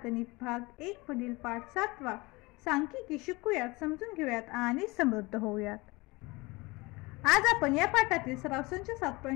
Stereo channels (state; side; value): quieter; right; 23.7 dB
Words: गणित भाग 1 मधील पाठ 7वा सांख्यिकी शिकूयात, समजून घेऊयात आणि समृद्ध होऊयात. आज आपण या पाठातील सराव संच